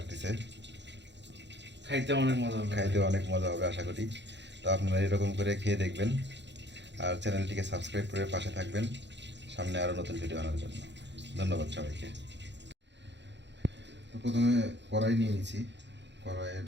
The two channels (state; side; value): late; left; 0.52 ms